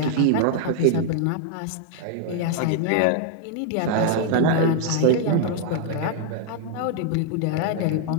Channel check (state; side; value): different; both; correlation 0.00